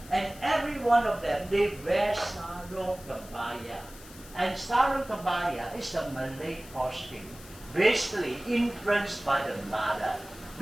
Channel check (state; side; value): noise; left; hiss, 19 dB below the sound